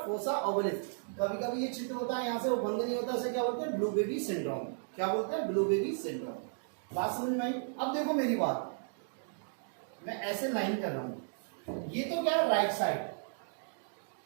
ovalis. कभी कभी ये छिद्र होता है यहाँ से, वो बंद नहीं होता, इसे क्या बोलते हैं? Blue baby syndrome. क्या बोलते हैं? Blue baby syndrome. बात समझ में आई? अब देखो मेरी बात, मैं ऐसे लाइन कर रहा हूं, ये तो क्या है? राइट साइड,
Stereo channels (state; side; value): silent; left; digital silence